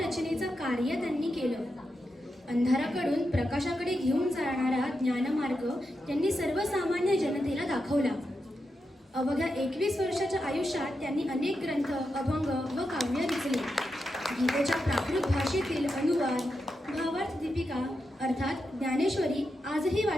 कार्य त्यांनी केलं. अंधाराकडून प्रकाशाकडे घेऊन जाणारा ज्ञानमार्ग त्यांनी सर्वसामान्य जनतेला दाखवला. अवघ्या 21 वर्षाच्या आयुष्यात त्यांनी अनेक ग्रंथ, अभंग व काव्य रचले. गीतेच्या प्राकृत भाषेतील अनुवाद, भावार्थ दीपिका अर्थात ज्ञानेश्वरी आजही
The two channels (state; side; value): normal; both; correlation 0.87